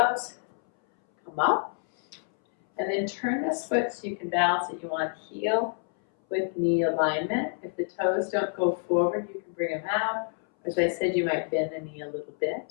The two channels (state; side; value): silent; right; 59 dB below the other